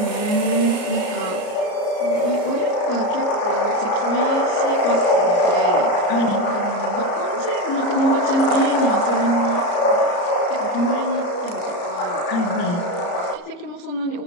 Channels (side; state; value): right; late; 34 ms